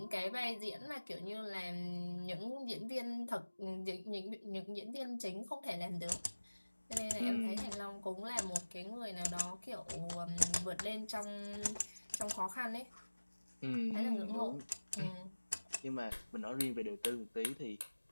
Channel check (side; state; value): both; inverted; correlation -1.00